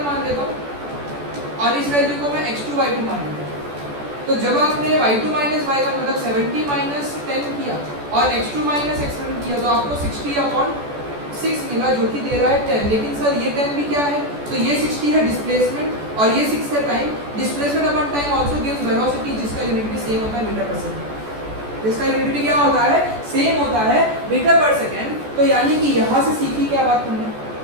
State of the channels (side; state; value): left; late; 14 ms